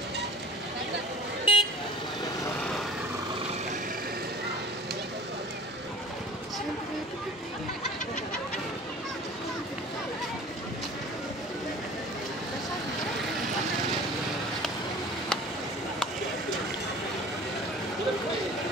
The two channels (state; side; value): normal; both; correlation 0.43